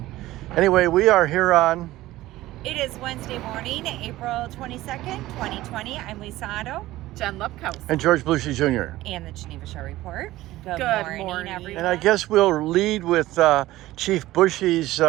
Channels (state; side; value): quieter; left; 16.5 dB